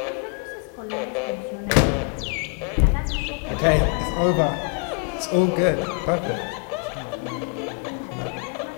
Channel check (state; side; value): quieter; right; 35.8 dB